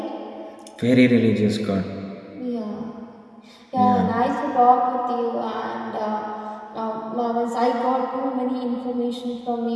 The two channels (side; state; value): both; identical; correlation 1.00